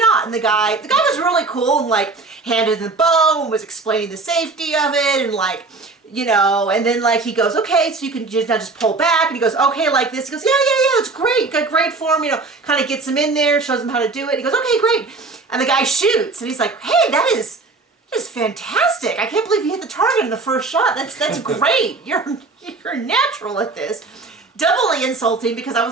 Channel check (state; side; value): quieter; left; 3.7 dB